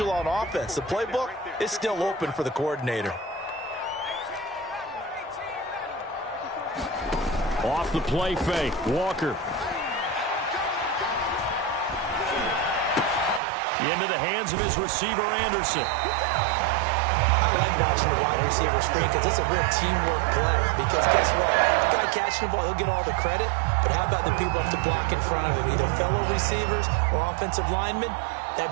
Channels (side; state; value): left; drops out; at 13.4 s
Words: on offense. The playbook is still open for the coordinator. Off the play fake, Walker. Into the hands of his receiver, Anderson. I like watching the wide receiver screen because it's a real teamwork play. Because guess what? The guy catching the ball, he'll get all the credit. But how about the people up to block in front of him, either fellow receivers or offensive linemen?